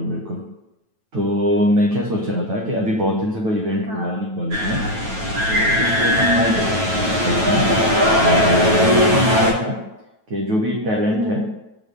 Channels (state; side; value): late; left; 9.2 ms